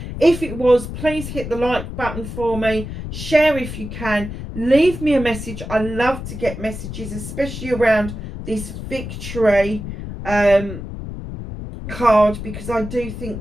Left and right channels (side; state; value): left; noise; rumble, 8 dB below the sound